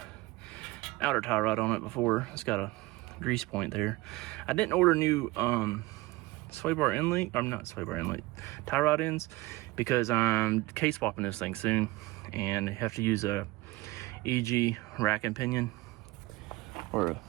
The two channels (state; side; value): quieter; left; 20.4 dB